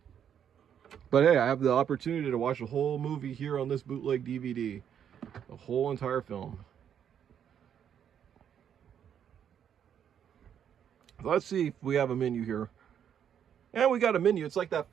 But hey, I have the opportunity to watch a whole movie here on this bootleg DVD. The whole entire film. Let's see if we have a menu here. And we got a menu. It's like that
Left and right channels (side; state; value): left; quieter; 8.9 dB